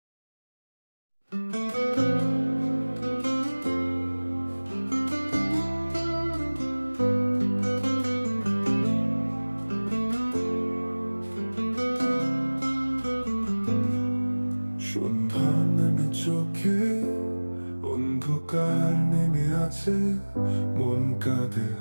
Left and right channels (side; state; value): both; inverted; correlation -1.00